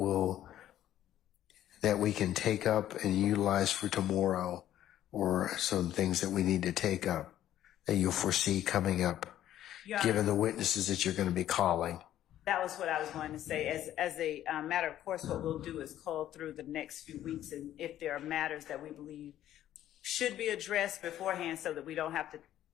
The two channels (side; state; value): right; quieter; 12.3 dB